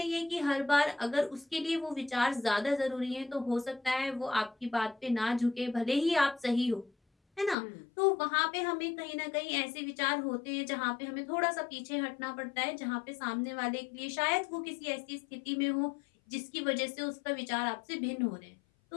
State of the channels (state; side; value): drops out; right; at 7.6 s